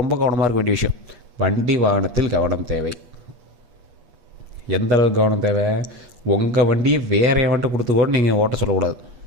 ரொம்ப கவனமாக இருக்க வேண்டிய விஷயம். வண்டி வாகனத்தில் கவனம் தேவை. எந்த அளவுக்கு கவனம் தேவை, உங்கள் வண்டியை வேறு எவன்ட்டு கொடுத்து கூட நீங்கள் ஓட்ட சொல்லக்கூடாது.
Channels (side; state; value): left; late; 8.3 ms